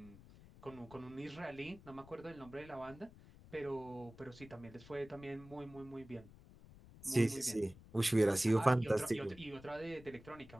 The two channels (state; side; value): noise; left; rumble, 20 dB below the sound